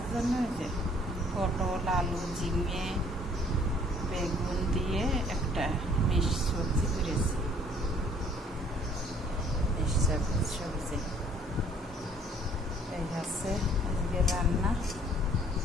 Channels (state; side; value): normal; both; correlation 0.59